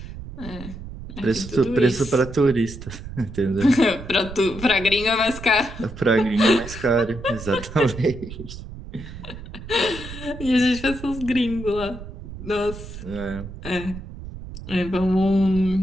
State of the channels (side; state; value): right; noise; rumble, 12 dB below the sound